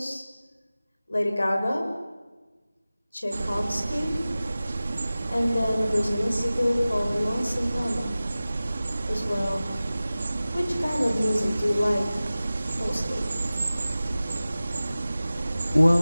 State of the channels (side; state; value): both; inverted; correlation -0.97